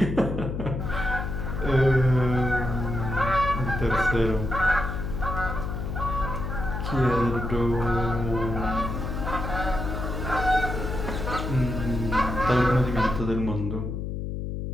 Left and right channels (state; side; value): noise; left; hum, 4 dB below the sound